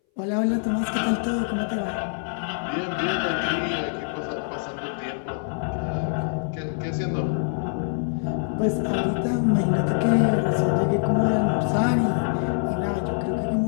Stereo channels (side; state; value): right; silent; 60 dB below the other